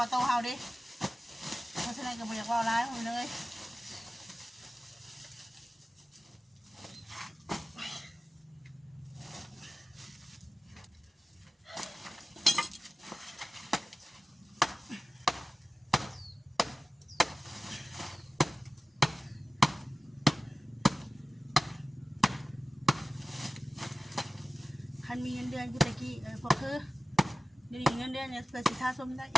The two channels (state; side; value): normal; both; correlation 0.95